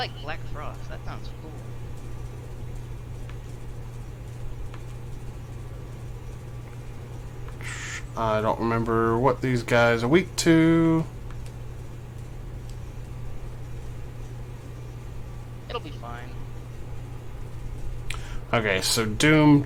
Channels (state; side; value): identical; both; correlation 1.00